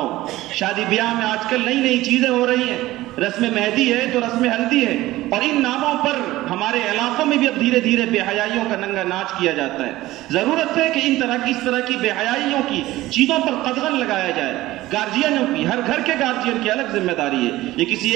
شادی بیاہ میں آج کل نئی چیزیں ہو رہی ہیں، رسم مہندی ہے تو رسم ہلدی ہے، اور ان ناموں پر ہمارے علاقوں میں بھی اب دھیرے دھیرے بے حیائیوں کا ننگا ناچ کیا جاتا ہے. ضرورت ہے کہ اس طرح کی بے حیائیوں کی چیزوں پر قدغن لگایا جائے. گارجینوں کی، ہر گھر کے گارجین کی الگ ذمہ داری ہے، یہ کسی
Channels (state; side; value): quieter; left; 17.0 dB